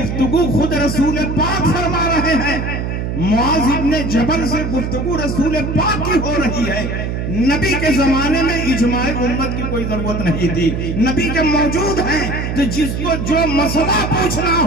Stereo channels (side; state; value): right; noise; hum, 3 dB below the sound